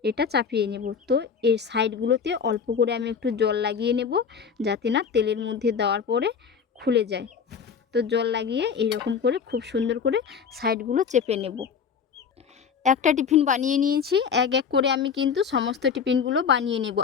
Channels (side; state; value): right; quieter; 6.5 dB